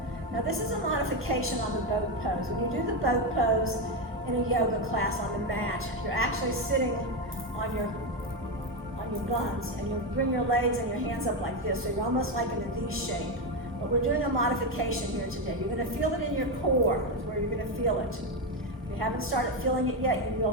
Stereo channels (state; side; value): normal; both; correlation 0.10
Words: Now this is a modification on the boat pose. When you do the boat pose in a yoga class on the mat, you're actually sitting on your buns, and you bring your legs and your hands up like this, so you're almost like in a V shape. But we're doing a modification here today. You're going to feel it in your core, is where you're going to feel it. If you haven't started feeling it yet, you